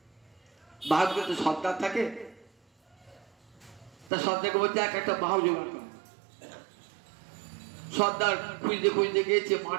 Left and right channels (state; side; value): drops out; left; at 4.1 s